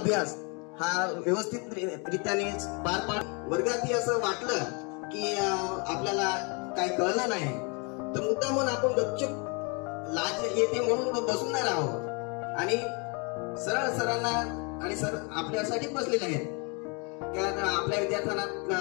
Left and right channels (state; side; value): quieter; right; 32.7 dB